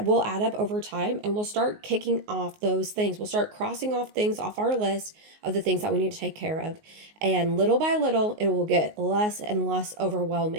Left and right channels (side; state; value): left; late; 19 ms